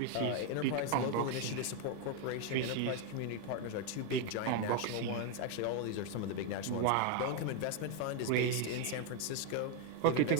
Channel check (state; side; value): different; both; correlation 0.01